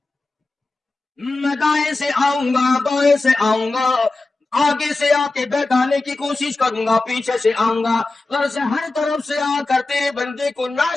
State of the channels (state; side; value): quieter; right; 3.3 dB